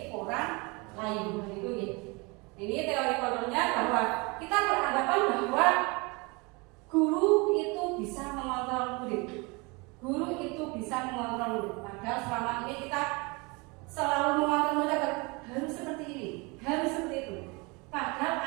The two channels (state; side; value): quieter; left; 27.7 dB